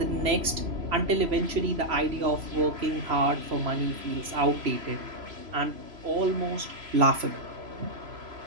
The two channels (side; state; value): left; late; 3.0 ms